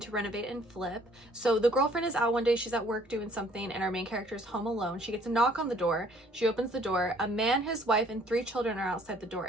to renovate and flip. So the girlfriend is out one day. She's at work doing something, and our main character is home alone. She gets a knock on the door. She opens the door. A man, his wife, and 3 children are outside the door,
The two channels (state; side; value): normal; both; correlation 0.59